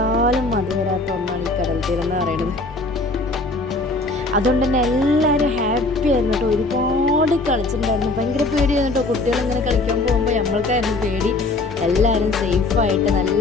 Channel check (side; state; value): right; quieter; 3.1 dB